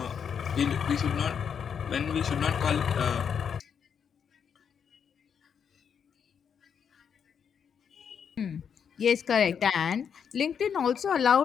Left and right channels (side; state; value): right; quieter; 7.3 dB